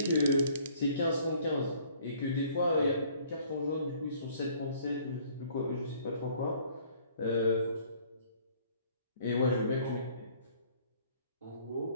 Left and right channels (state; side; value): inverted; both; correlation -0.58